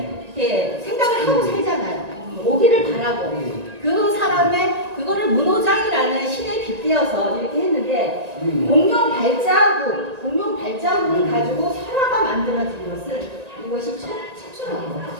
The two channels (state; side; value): late; left; 1.9 ms